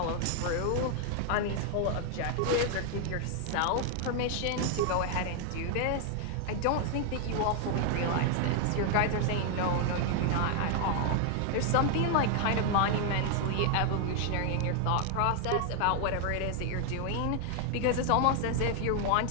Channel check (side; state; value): both; different; correlation 0.00